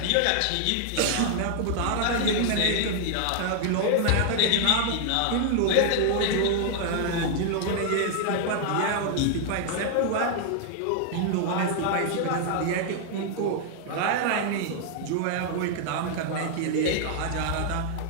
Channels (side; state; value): both; different; correlation 0.00